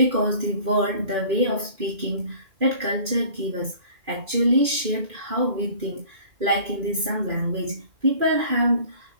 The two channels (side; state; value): left; late; 2.5 ms